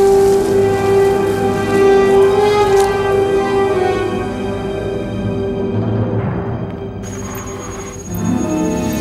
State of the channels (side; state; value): both; identical; correlation 1.00